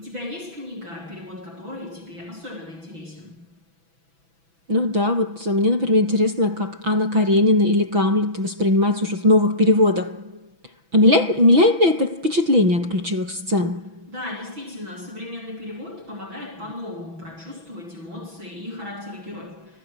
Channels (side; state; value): left; late; 6.0 ms